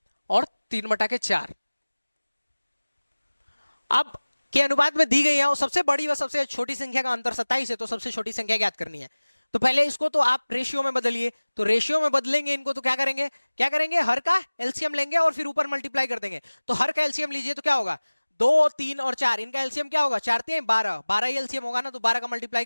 और 3/4। अब के अनुपात में दी गई है, और सबसे बड़ी व सबसे छोटी संख्या का अंतर 27 है, तो सबसे छोटी संख्या ज्ञात करनी है। तो पहले इसको तो आप रेशियो में बदलिए, तो रेशियो में बदलेंगे इनको, तो क्या करेंगे, हर का एलसीएम लेंगे और फिर ऊपर मल्टीप्लाई कर देंगे। तो हर का एलसीएम लीजिए तो क्या होगा, 2 3 और 4, इनका एलसीएम क्या होगा, 4 3 12, 12 ही एलसीएम होगा ना, तो 12 का मल्टीप्लाई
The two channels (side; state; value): both; inverted; correlation -1.00